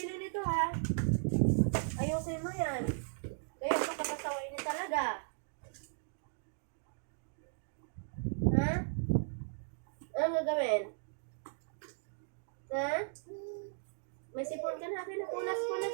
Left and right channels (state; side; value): silent; left; digital silence